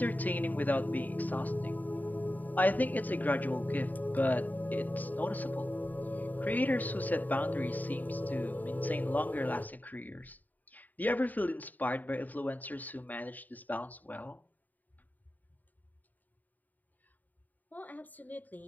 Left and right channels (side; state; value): right; late; 0.083 ms